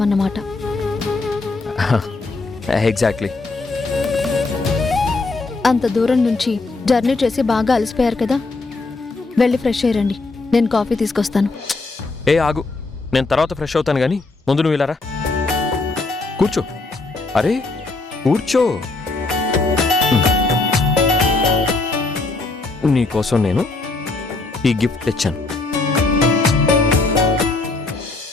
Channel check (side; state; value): right; quieter; 3.5 dB